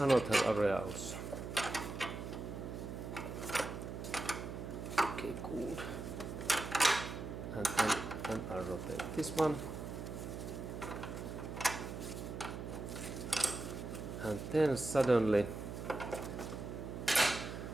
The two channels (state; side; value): noise; right; hum, 7 dB below the sound